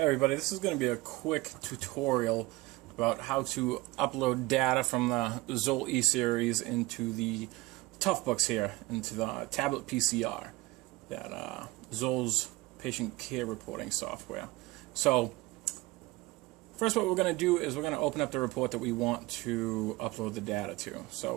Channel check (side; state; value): left; quieter; 20.9 dB